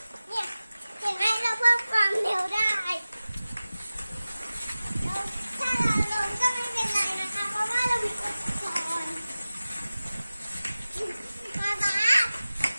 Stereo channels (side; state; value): both; inverted; correlation -0.97